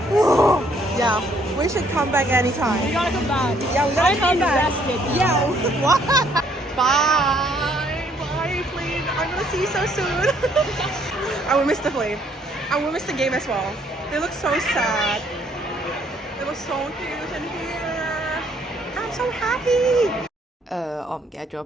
Yeah, we should come back anytime. We gotta come back. Yeah, we gotta come back. Yeah. What? Bye, Flynn. I'm gonna see you so soon. I will miss the Flynn. I will miss the game as well. They look so sad. It was so cute in here. I'm so happy. 我唔記得咗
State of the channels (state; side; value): normal; both; correlation 0.66